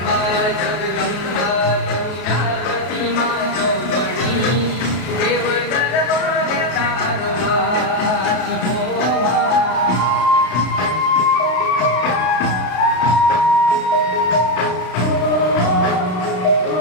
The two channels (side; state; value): right; late; 33 ms